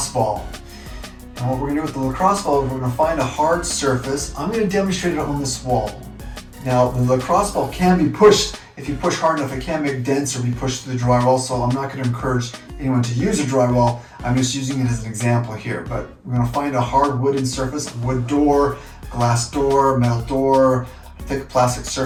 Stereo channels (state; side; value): identical; both; correlation 1.00